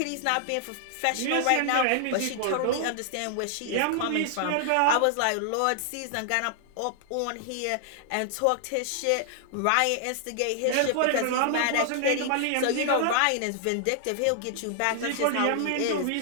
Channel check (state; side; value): different; both; correlation -0.01